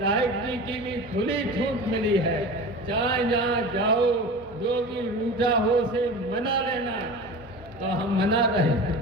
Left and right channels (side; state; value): both; normal; correlation 0.33